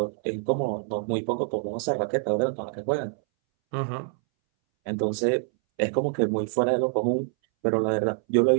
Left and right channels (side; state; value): left; silent; 61 dB below the other